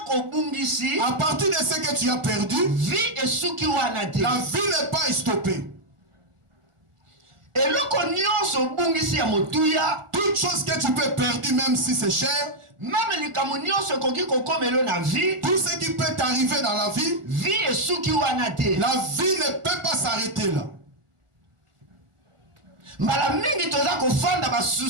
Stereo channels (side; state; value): left; late; 1.4 ms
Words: à partir de ce que tu as perdu, la vie n'est pas stoppée. Toute chose que tu peux perdre, même si c'est cher, tout ce qui peut t'arriver dans la vie, la vie ne peut pas s'arrêter là.